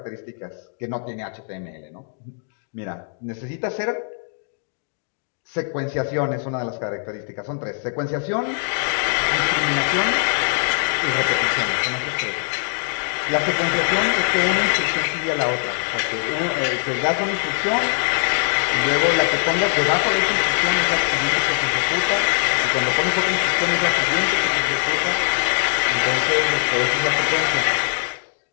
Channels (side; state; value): right; silent; digital silence